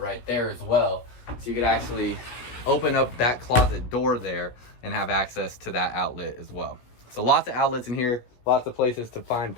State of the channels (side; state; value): right; late; 17 ms